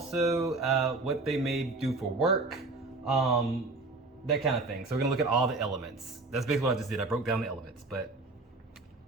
what they may do for work, that kind of thing. So we're gonna look at all the elements. That's basically what I just did. I broke down the elements, but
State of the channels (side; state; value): left; quieter; 3.4 dB